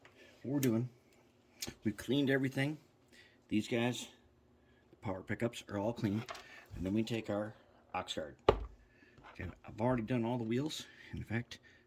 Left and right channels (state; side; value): identical; both; correlation 1.00